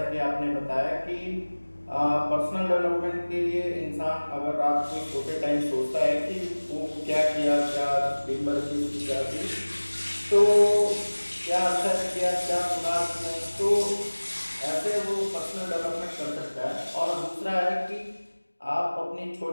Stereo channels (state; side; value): inverted; both; correlation -1.00